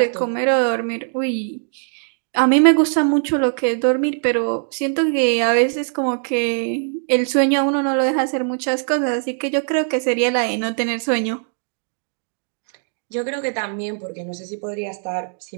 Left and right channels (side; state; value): left; silent; 65 dB below the other